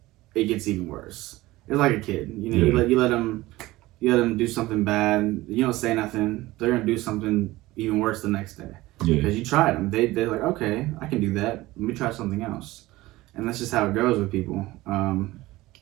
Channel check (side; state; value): left; quieter; 18.6 dB